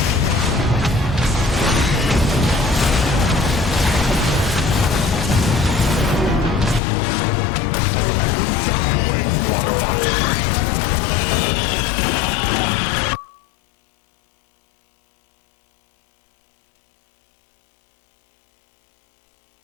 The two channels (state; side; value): drops out; right; at 6.8 s